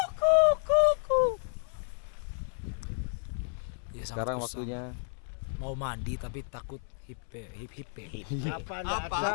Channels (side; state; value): right; silent; 57 dB below the other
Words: Ya, Sekarang sangat waktunya mau mandi tapi takut hipe. Apa enggak